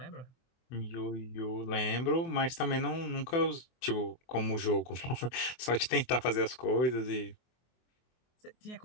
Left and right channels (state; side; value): late; right; 24 ms